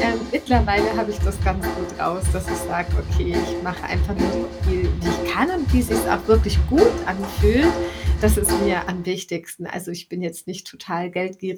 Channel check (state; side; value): identical; both; correlation 1.00